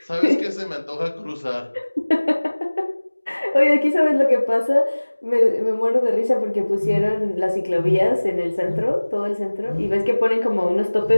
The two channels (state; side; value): inverted; both; correlation -1.00